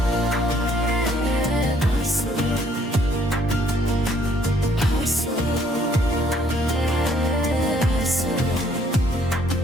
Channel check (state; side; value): normal; both; correlation 0.64